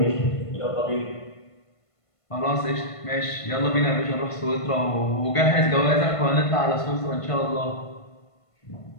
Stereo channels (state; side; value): late; right; 1.5 ms